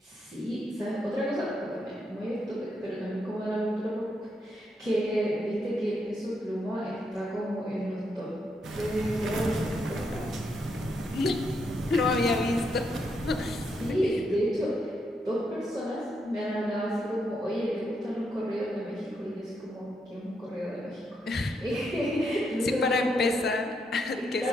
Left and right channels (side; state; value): both; normal; correlation 0.79